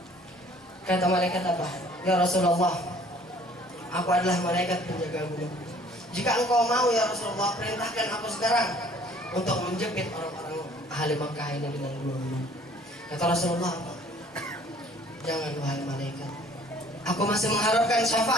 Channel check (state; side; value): normal; both; correlation 0.55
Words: Kata malaikat apa? Ya Rasulullah, aku adalah malaikat penjaga gunung. Jika engkau mau ya Rasulullah, perintahkan aku sekarang untuk menjepit orang-orang ahli Mekah ini dengan gunung. Kata Rasulullah apa? Jangan wahai malaikat, aku masih mengharapkan